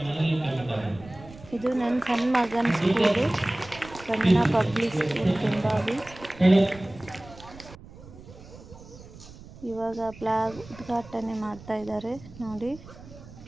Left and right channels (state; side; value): noise; right; rumble, 18 dB below the sound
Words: ಇದು ನನ್ನ ಸಣ್ಣ ಮಗನ ಸ್ಕೂಲು, ಸ್ಪಂದನ ಪಬ್ಲಿಕ್ ಸ್ಕೂಲ್ ಕೆಂಬಾವಿ. ಇವಾಗ ಫ್ಲ್ಯಾಗ್ ಉದ್ಘಾಟನೆ ಮಾಡ್ತಾ ಇದ್ದಾರೆ ನೋಡಿ.